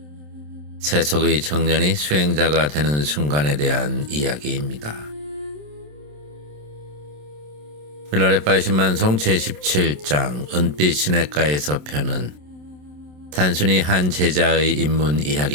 세속의 청년이 수행자가 되는 순간에 대한 이야기입니다. 밀라레빠의 신만송 제17장 은빛 시냇가에서 편은 단순히 한 제자의 입문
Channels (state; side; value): late; left; 27 ms